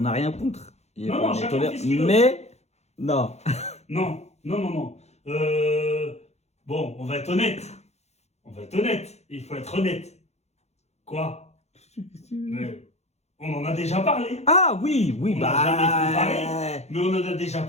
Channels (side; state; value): right; late; 0.32 ms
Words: n'a rien contre. Non, non, On chacun tolère- fait ce qu'il veut. Mais, non. Non, non, non, non. Bon, on va être honnête. On va être honnête. Il faut être honnête. Quoi? Mais on en a déjà parlé. Ah oui, oui, On bah... n'a jamais Mais on en a déjà